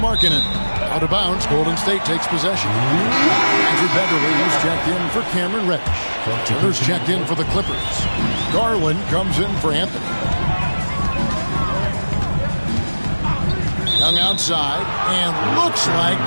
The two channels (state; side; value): inverted; both; correlation -1.00